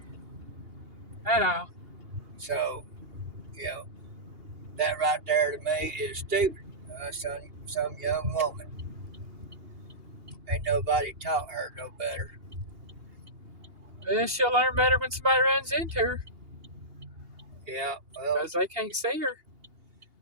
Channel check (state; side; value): late; left; 2.8 ms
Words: at all. so that right there to me is stupid. Some young woman. Ain't nobody taught her no better. Well, she'll learn better when somebody runs into her Yeah, well, because they can't see her.